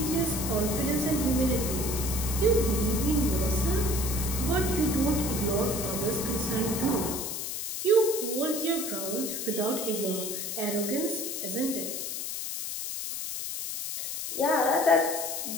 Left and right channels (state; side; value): noise; left; hiss, 4 dB below the sound